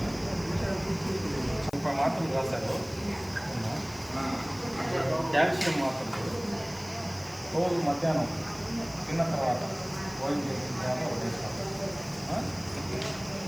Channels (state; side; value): noise; left; hiss, 20 dB below the sound